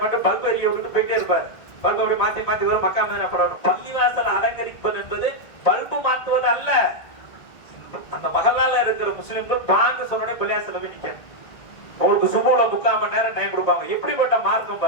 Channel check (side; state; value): right; late; 1.8 ms